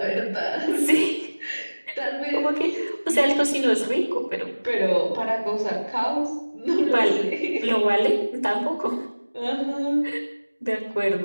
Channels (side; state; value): both; inverted; correlation -1.00